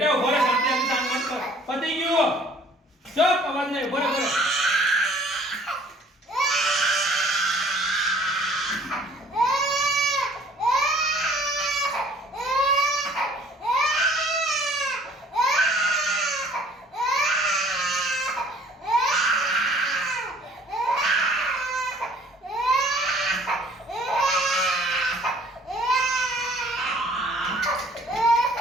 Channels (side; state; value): both; normal; correlation 0.55